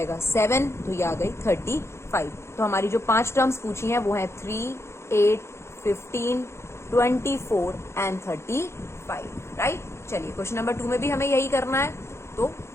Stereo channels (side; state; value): right; late; 0.13 ms